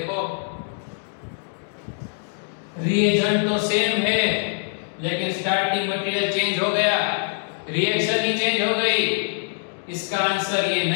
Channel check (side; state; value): right; silent; 62 dB below the other